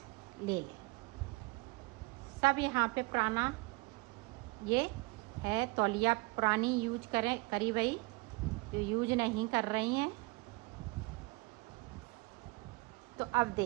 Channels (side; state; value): left; quieter; 26.2 dB